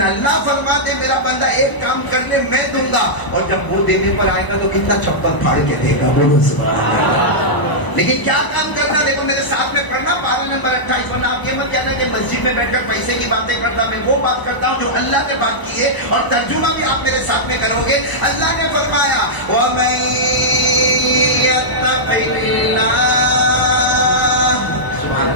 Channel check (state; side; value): late; right; 1.0 ms